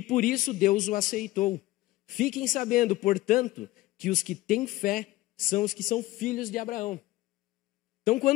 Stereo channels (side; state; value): right; quieter; 17.8 dB